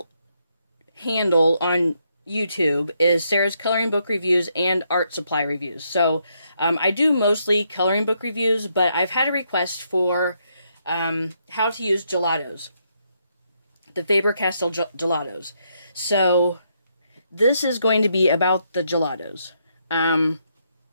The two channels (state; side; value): inverted; both; correlation -0.76